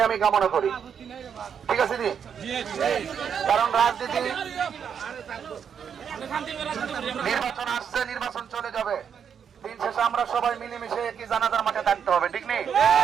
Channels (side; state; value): left; quieter; 7.6 dB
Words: আমি কামনা করি, ঠিক আছে দি? কারণ রাজনীতি, নির্বাচন আসছে, নির্বাচন চলে যাবে, দিন শেষে আমরা সবাই মিলেমিশে একই জানাজার মাঠে থাকতে হবে, ঠিক নেই?